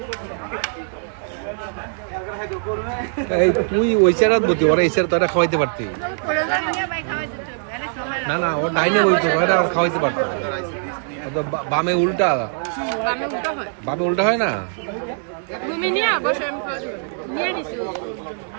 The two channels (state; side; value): silent; left; 65 dB below the other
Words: এই তুই ওই চেরাত বতি, ওরা এই চেরা তো এটা খাওয়াইতে পারতি না। না ওর ডাইনে বইতো তো, এটা খাওয়াইতে পারতো। বামে উল্টা, বামে উল্টা হয় না।